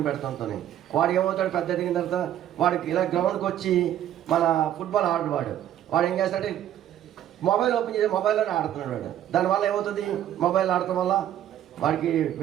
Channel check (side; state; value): left; quieter; 11.4 dB